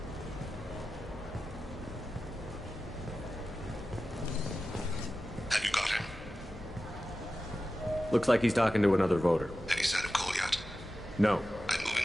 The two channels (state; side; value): normal; both; correlation 0.94